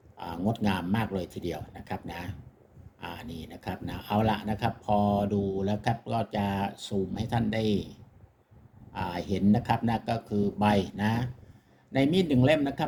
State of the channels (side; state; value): both; identical; correlation 1.00